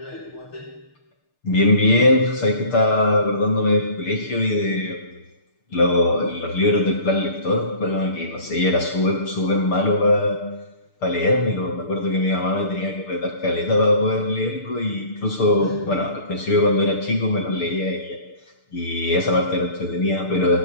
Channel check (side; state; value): right; late; 6.7 ms